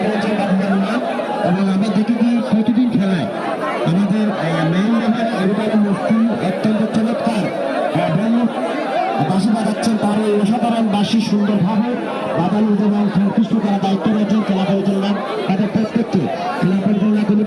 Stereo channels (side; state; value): both; identical; correlation 1.00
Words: প্রতিদিন খেলায় আমাদের অত্যন্ত চমৎকার বাঁশি বাজাচ্ছেন। তার এই অসাধারণ বাঁশি সুন্দরভাবে বাজানো এবং সন্তুষ্ট করা দায়িত্ব রয়েছেন খেলা পরিচালনা তাদের প্রত্যেককে খেলা পরিচালনা